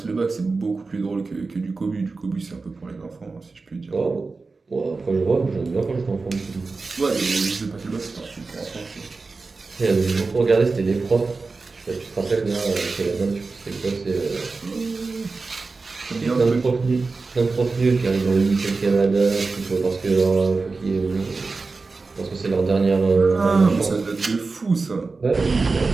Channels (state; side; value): quieter; left; 4.0 dB